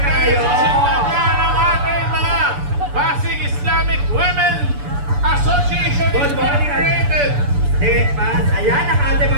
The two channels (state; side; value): late; left; 6.9 ms